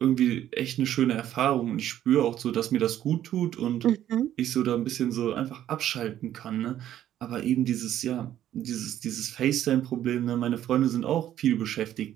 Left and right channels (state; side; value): quieter; left; 11.8 dB